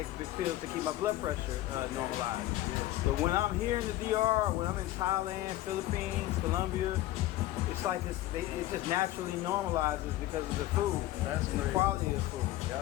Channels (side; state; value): right; quieter; 15.5 dB